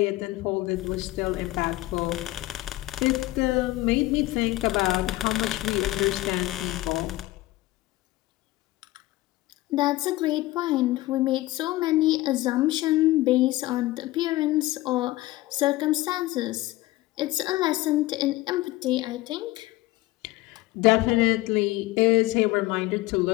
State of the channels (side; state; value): right; quieter; 18.2 dB